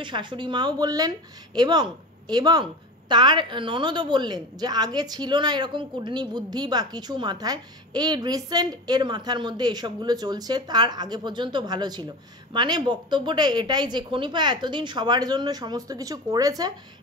শাশুড়ি মাও বললেন, এবং তার ননদও বললেন যে আগে ছিল না এরকম কুডনি বুদ্ধি বা কিছু মাথায়, এই রিসেন্ট এর মাথার মধ্যে এসবগুলো চলছে, তার আগে পর্যন্ত ভালো ছিল। বক্তব্যটা এটাই যে খনিপা এতদিন সবার জন্য সমস্ত কিছু করেছে,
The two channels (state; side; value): normal; both; correlation 0.29